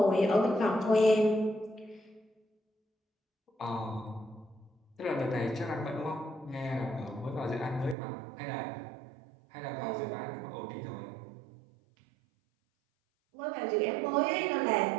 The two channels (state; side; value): drops out; left; at 8.0 s